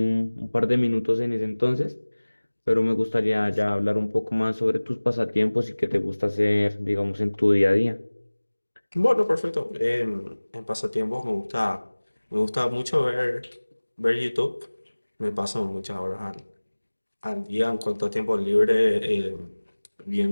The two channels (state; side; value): inverted; both; correlation -1.00